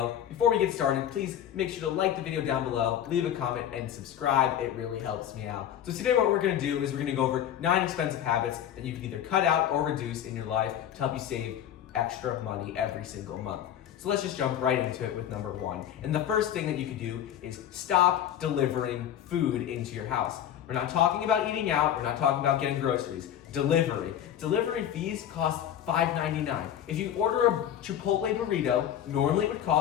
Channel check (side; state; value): right; quieter; 10.4 dB